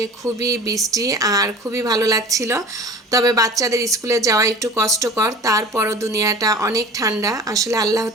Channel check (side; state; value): both; normal; correlation 0.41